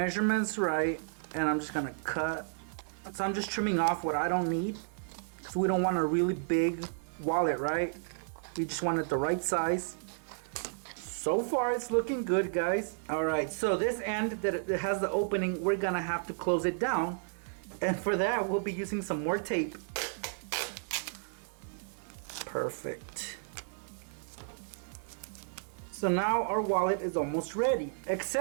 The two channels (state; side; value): silent; left; 56 dB below the other